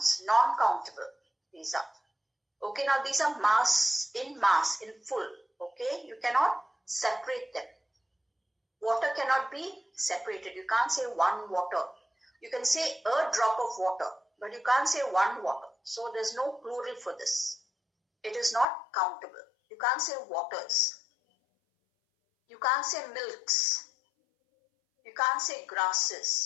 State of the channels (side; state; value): right; drops out; at 18.7 s